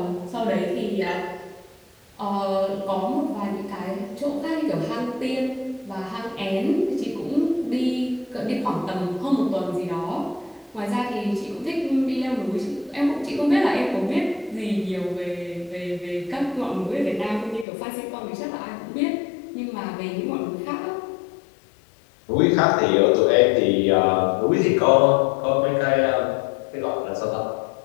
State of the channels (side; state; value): right; drops out; at 17.7 s